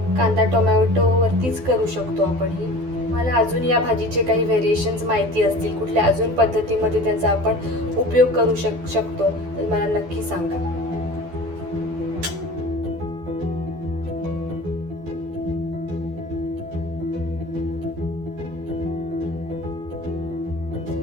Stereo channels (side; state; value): left; late; 12 ms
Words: कांदा टोमॅटो वरतीच करू शकतो आपण ही. मला अजून या भाजीचे काही व्हेरिएशन्स माहिती असतील, कुठल्या अजून पद्धतीमध्ये त्याचा आपण उपयोग करू शकतो तर मला नक्की सांगा.